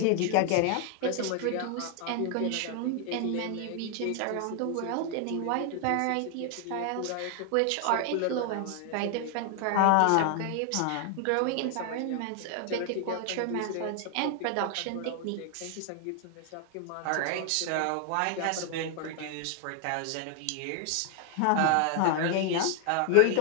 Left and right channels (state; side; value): different; both; correlation 0.00